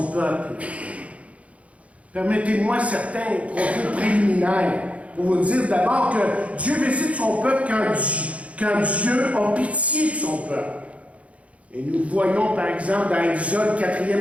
peuple? Permettez-moi certains propos préliminaires pour vous dire d'abord que Dieu visite son peuple quand Dieu a pitié de son peuple. Et nous voyons par exemple dans Exode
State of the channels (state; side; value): late; left; 0.064 ms